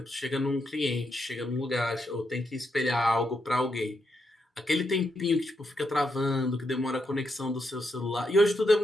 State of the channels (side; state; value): both; normal; correlation 0.81